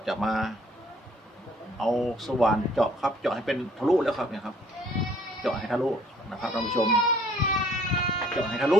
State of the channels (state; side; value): normal; both; correlation 0.60